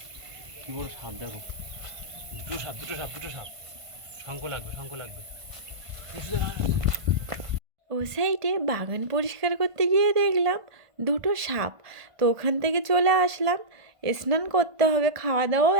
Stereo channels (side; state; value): left; late; 1.5 ms